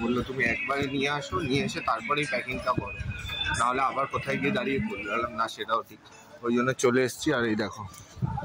বললো তুমি একবারে নিয়ে আসো, নিয়ে এসে তারপরেই প্যাকিংটা করো, নাহলে আবার কোথায় গিয়ে দাঁড়িয়ে পড়লো। বললাম না, সেটাও ঠিক, ওই জন্য চলে এসছি। আর এই দেখো,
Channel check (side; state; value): both; identical; correlation 1.00